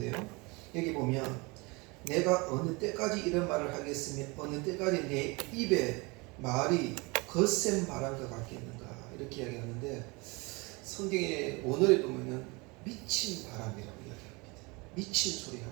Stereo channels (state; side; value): quieter; left; 26.7 dB